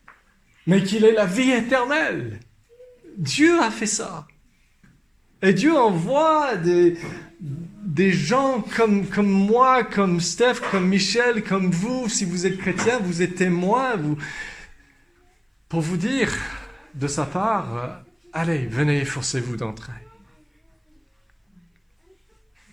mais qu'il ait la vie éternelle. Dieu a fait ça. Et Dieu envoie des gens comme moi, comme Steph, comme Michel, comme vous, si vous êtes chrétien, vous êtes témoins, pour vous dire de sa part, allez, venez, efforcez-vous d'entrer.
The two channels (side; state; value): both; identical; correlation 1.00